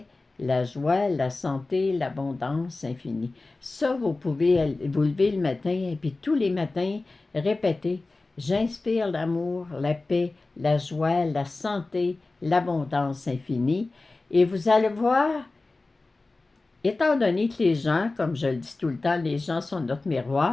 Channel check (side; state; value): right; quieter; 3.4 dB